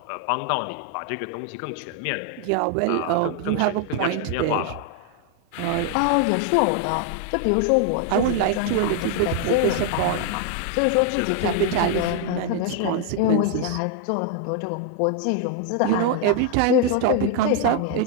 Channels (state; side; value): different; both; correlation 0.00